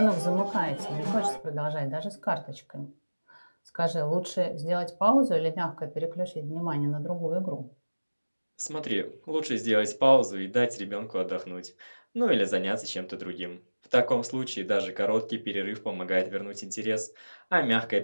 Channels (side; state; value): both; inverted; correlation -1.00